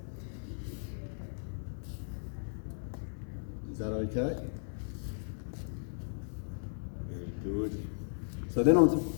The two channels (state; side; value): silent; right; digital silence